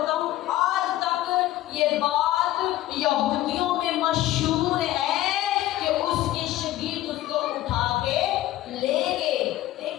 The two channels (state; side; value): quieter; right; 14.9 dB